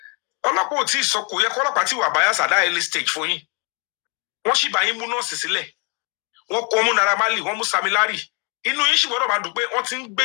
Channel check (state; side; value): quieter; right; 34.4 dB